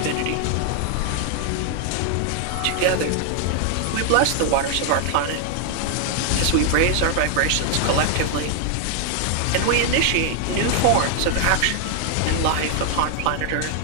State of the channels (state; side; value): different; both; correlation 0.00